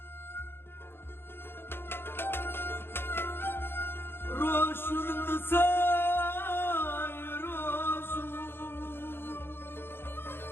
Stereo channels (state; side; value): late; right; 0.11 ms